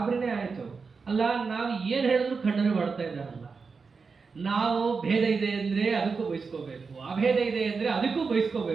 ಆಯ್ತು. ಅಲ್ಲ ನಾವು ಏನ್ ಹೇಳಿದ್ರು ಖಂಡನೆ ಮಾಡ್ತಾ ಇದ್ದಾರಲ್ಲ. ನಾವು ಭೇದ ಇದೆ ಅಂದ್ರೆ ಅದಕ್ಕೂ ಬಯಸ್ಕೋಬೇಕು, ಅಭೇದ ಇದೆ ಅಂದ್ರೆ ಅದಕ್ಕೂ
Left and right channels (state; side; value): quieter; left; 4.9 dB